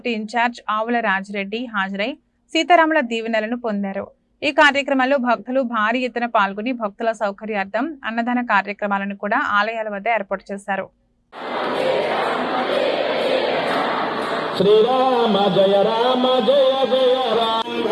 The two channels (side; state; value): both; identical; correlation 1.00